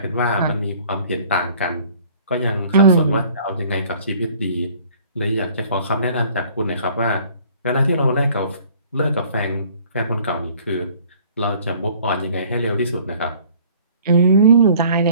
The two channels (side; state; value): both; inverted; correlation -0.53